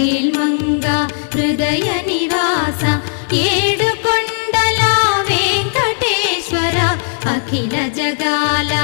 హృదయ నివాస ఏడుకొండల వెంకటేశ్వర అఖిల జగాల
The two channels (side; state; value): right; silent; digital silence